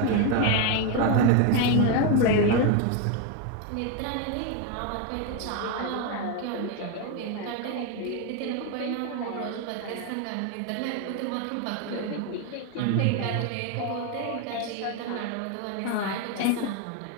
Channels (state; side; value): different; both; correlation 0.02